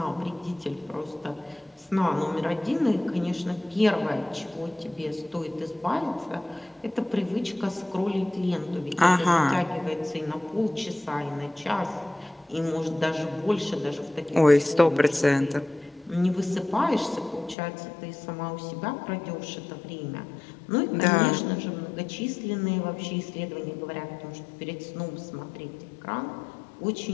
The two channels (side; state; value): right; drops out; at 17.6 s